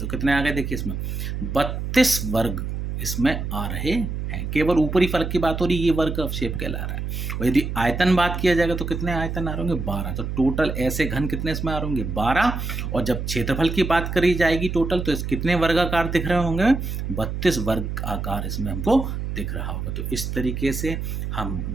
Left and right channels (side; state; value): right; noise; hum, 4 dB below the sound